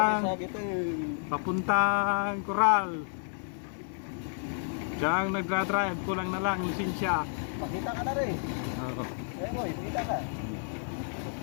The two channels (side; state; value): right; silent; digital silence